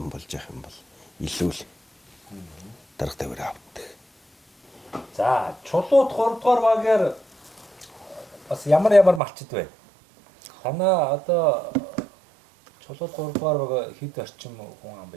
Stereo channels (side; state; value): left; drops out; at 9.2 s